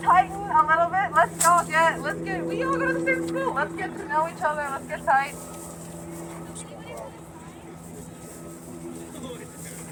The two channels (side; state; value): both; identical; correlation 1.00